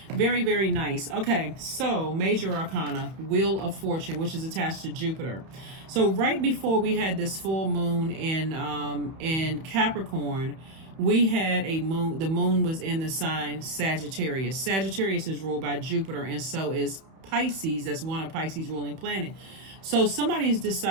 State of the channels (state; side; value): late; left; 31 ms